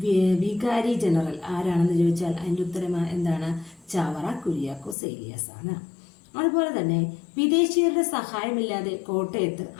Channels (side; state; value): right; drops out; at 5.0 s